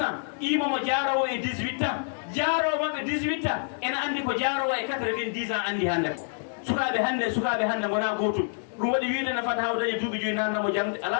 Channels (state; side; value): silent; right; digital silence